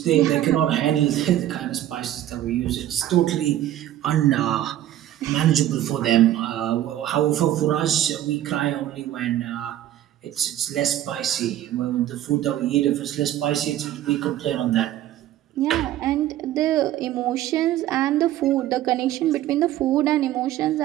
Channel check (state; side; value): quieter; left; 12.8 dB